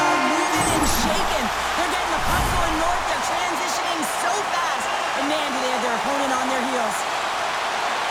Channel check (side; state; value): both; identical; correlation 1.00